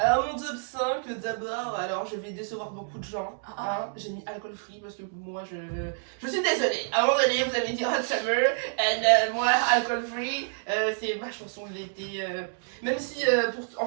mon top 5, d'abord, alors je vais décevoir beaucoup de gens. Ah. Hein. J'ai mis alcool free parce que moi je suis désolée. À un moment donné, vous avez dit Hot Summer, et moi alcool free, c'est ma chanson de l'été. Même si, en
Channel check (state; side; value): silent; left; digital silence